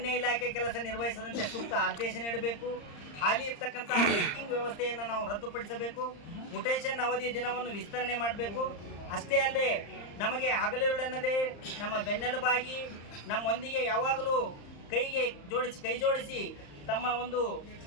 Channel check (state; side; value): late; right; 35 ms